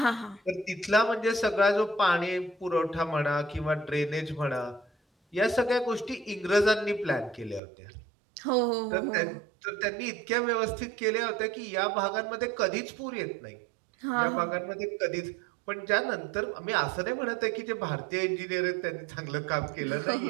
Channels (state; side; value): drops out; left; at 7.6 s